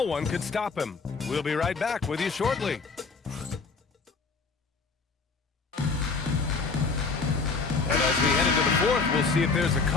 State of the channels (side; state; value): right; quieter; 4.5 dB